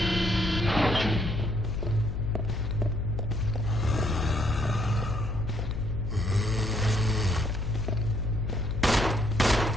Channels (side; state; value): left; noise; hum, 8 dB below the sound